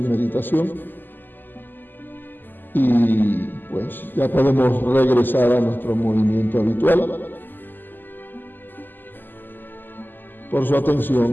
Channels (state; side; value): late; right; 0.090 ms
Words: meditación y pues ya podemos regresar a nuestro movimiento habitual. Por su